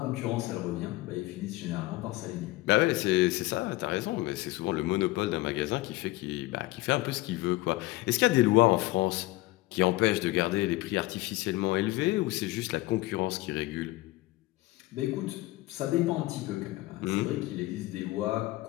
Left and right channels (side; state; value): right; quieter; 19.1 dB